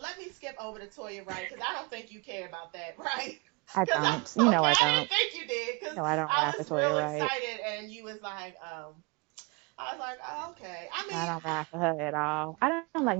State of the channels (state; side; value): quieter; left; 29.4 dB